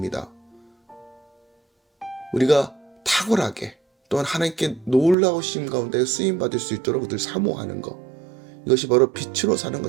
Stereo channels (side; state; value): left; drops out; at 5.2 s